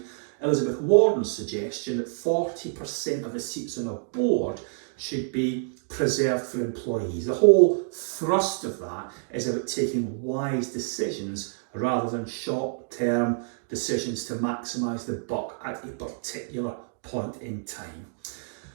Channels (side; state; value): left; silent; digital silence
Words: Elizabeth Warren's suggestion that 40% of the seats on a board should be preserved for employees. The whole thrust of that is about taking wise decisions rather than short-term decisions to maximise the buck at a particular point in time.